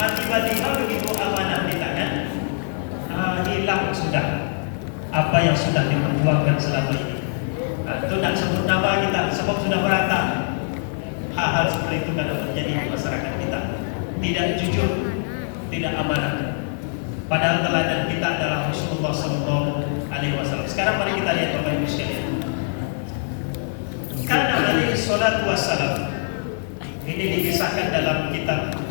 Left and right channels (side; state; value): right; silent; 58 dB below the other